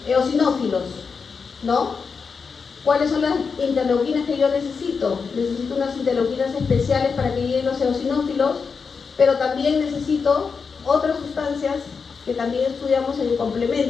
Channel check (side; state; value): right; quieter; 5.4 dB